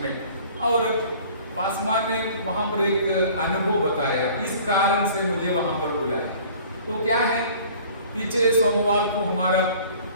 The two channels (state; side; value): inverted; both; correlation -0.50